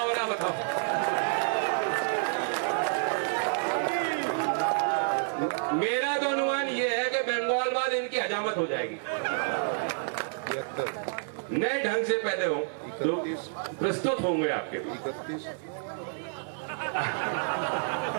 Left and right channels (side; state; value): left; silent; 58 dB below the other